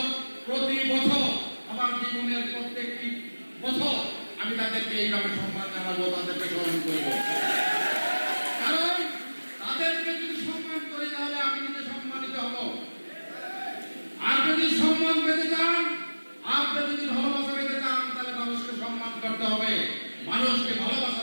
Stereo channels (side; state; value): both; inverted; correlation -1.00